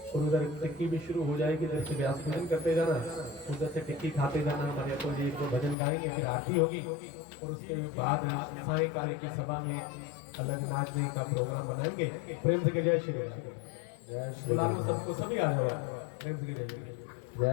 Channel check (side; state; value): right; drops out; at 5.8 s